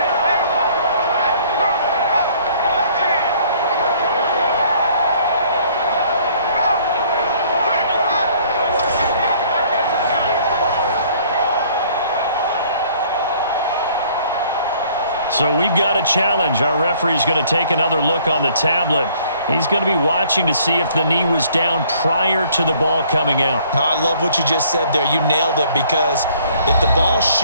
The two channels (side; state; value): both; inverted; correlation -0.59